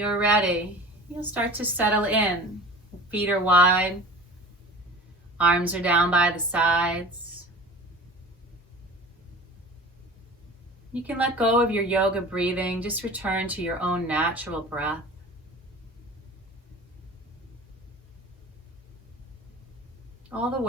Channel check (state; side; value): normal; both; correlation 0.39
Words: ready, you'll start to settle in. Feet are wide. Arms are down by the sides. You can let go of your yoga breathing. Just return to your own natural breath. All the